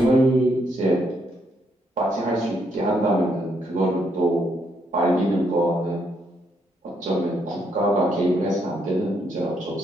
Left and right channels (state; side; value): normal; both; correlation 0.75